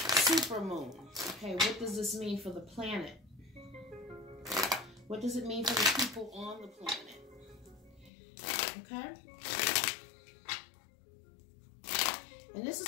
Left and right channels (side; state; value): right; drops out; at 8.1 s